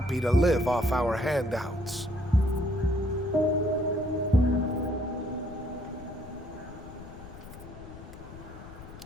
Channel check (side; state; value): left; noise; rumble, 15 dB below the sound